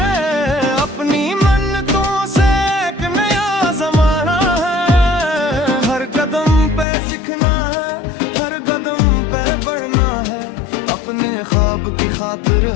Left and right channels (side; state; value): right; drops out; at 6.9 s